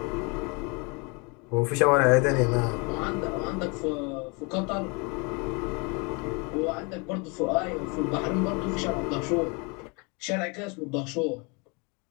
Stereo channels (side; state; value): right; quieter; 30.9 dB